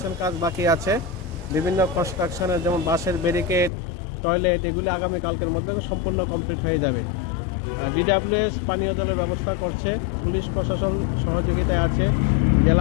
কাজ বাকি আছে। বিভিন্ন কনস্ট্রাকশনের যেমন বাসের ব্যারিকেড, টয়লেট এগুলি আগামীকালকের মধ্যে সম্পূর্ণ কমপ্লিট হয়ে যাবে। ডিডাব্লিউএস পানীয় জলের ব্যবস্থা করছে, পুলিশ প্রশাসন সহযোগিতায় আছে,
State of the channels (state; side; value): drops out; right; at 3.7 s